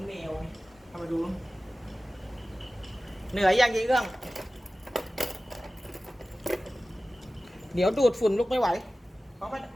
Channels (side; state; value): both; normal; correlation 0.97